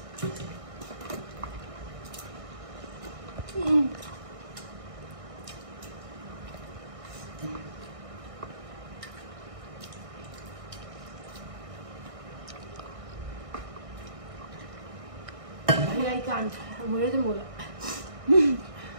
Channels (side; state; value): left; late; 1.6 ms